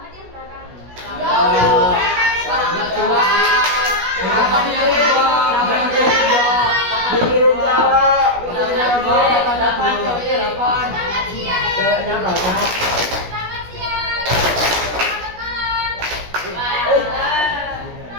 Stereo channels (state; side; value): late; left; 16 ms